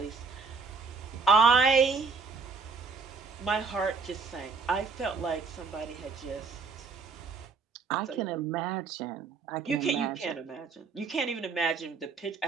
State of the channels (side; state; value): left; quieter; 4.7 dB